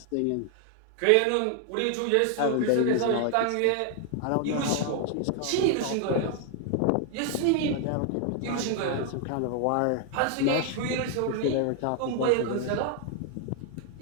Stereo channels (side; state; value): both; different; correlation 0.00